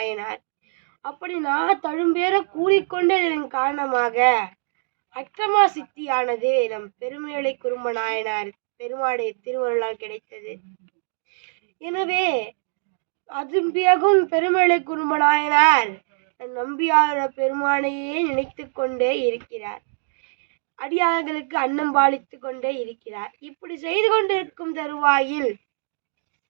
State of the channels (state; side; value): silent; left; digital silence